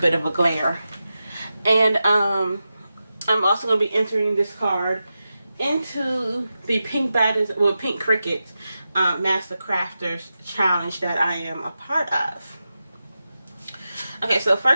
of a glare. And I'm also going to be entering this card into the Pink Cricut Master Crafters Challenge that I am a part of. Okay, so the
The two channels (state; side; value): inverted; both; correlation -0.91